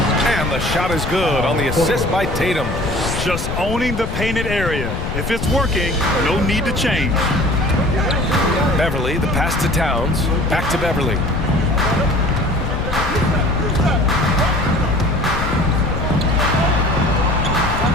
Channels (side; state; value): left; noise; rumble, 4 dB below the sound